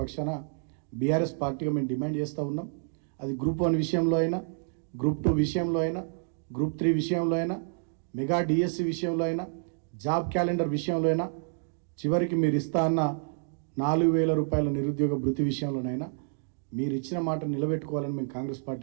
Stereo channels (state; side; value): silent; left; digital silence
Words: పక్షాన బీఆర్ఎస్ పార్టీగా మేము డిమాండ్ చేస్తూ ఉన్నాం. అది గ్రూప్ 1 విషయంలో అయినా, గ్రూప్ 2 విషయంలో అయినా, గ్రూప్ 3 విషయంలో అయినా, మెగా డిఎస్సి విషయంలో అయినా, జాబ్ క్యాలెండర్ విషయంలో అయినా, చివరికి మీరు ఇస్తా అన్న 4,000 రూపాయల నిరుద్యోగ భృతి విషయంలోనైనా మీరు ఇచ్చిన మాట నిలబెట్టుకోవాలని మేము కాంగ్రెస్